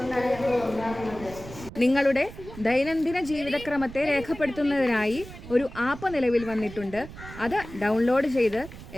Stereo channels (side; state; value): right; noise; rumble, 14 dB below the sound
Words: നിങ്ങളുടെ ദൈനംദിന ജീവിതക്രമത്തെ രേഖപ്പെടുത്തുന്നതിനായി ഒരു ആപ്പ് നിലവിൽ വന്നിട്ടുണ്ട്. അത് ഡൗൺലോഡ് ചെയ്ത്